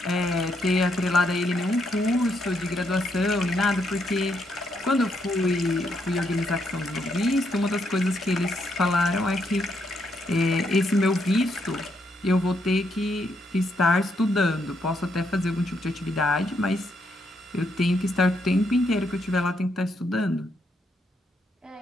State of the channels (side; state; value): both; normal; correlation 0.76